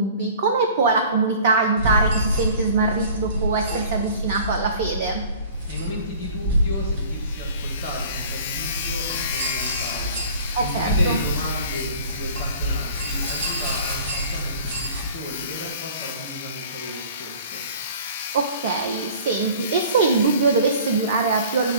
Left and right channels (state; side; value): inverted; both; correlation -0.47